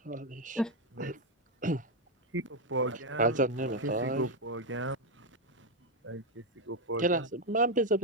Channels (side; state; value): both; normal; correlation 0.05